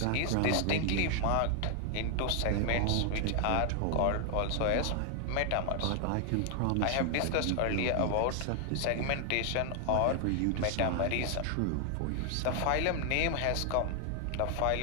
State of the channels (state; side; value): different; both; correlation 0.00